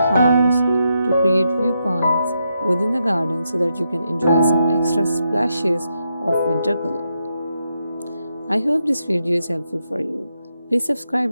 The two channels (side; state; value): both; inverted; correlation -0.83